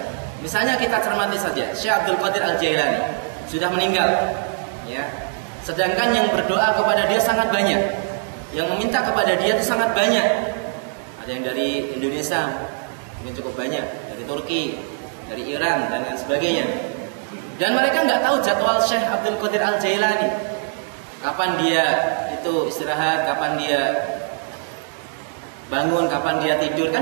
Misalnya kita cermati saja, Syekh Abdul Qadir Al-Jailani sudah meninggal, ya. Sedangkan yang berdoa kepada dia sangat banyak, yang meminta kepada dia itu sangat banyak. Ada yang dari Indonesia, mungkin cukup banyak, dari Turki, dari Iran dan lain sebagainya. Dan mereka nggak tahu jadwal Syekh Abdul Qadir Al-Jailani, kapan dia itu istirahat, kapan dia bangun, kapan dia tidur, kan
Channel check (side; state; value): left; silent; digital silence